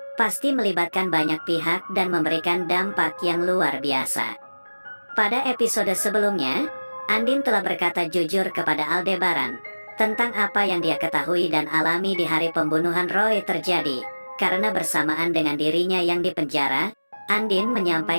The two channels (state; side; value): inverted; both; correlation -1.00